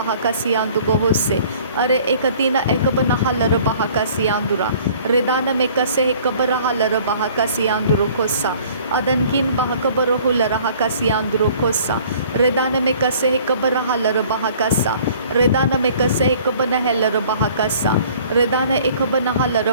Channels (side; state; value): both; inverted; correlation -0.53